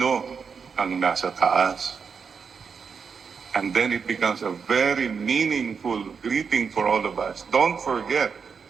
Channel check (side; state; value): left; quieter; 5.9 dB